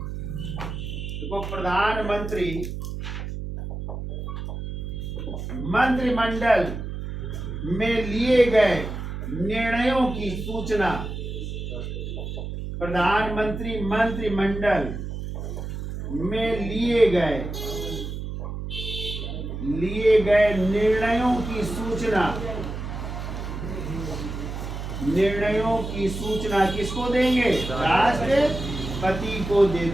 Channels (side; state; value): right; noise; hum, 6 dB below the sound